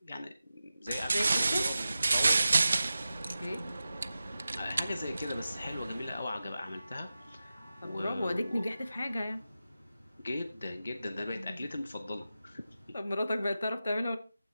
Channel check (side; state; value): both; inverted; correlation -0.93